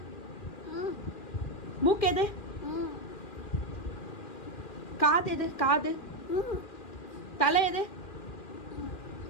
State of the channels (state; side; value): late; right; 2.4 ms